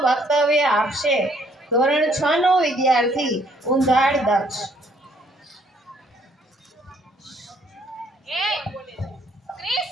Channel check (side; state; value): both; normal; correlation 0.65